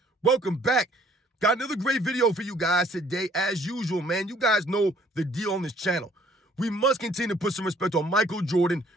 Welcome back. Got another great video for you guys today. As usual, man, you guys know the deal on this channel. We must continue to put some respect on Michael Jordan.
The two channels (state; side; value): normal; both; correlation 0.60